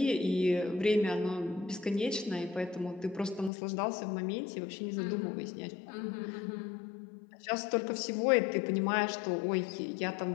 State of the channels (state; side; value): drops out; right; at 3.5 s